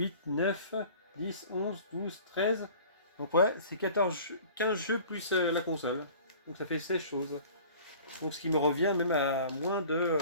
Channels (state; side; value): inverted; both; correlation -0.46